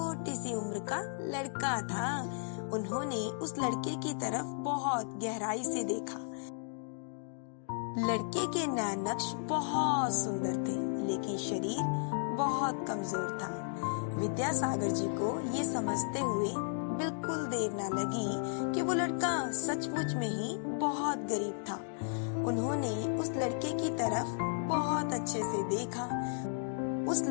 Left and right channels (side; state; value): right; silent; digital silence